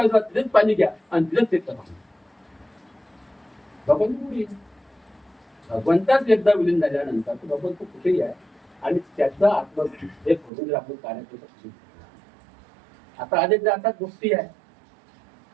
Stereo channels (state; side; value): drops out; left; at 10.5 s